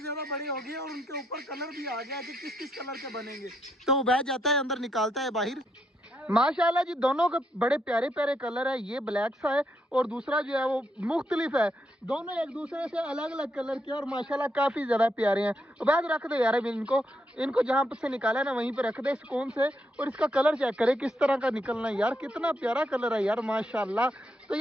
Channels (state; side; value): normal; both; correlation 0.78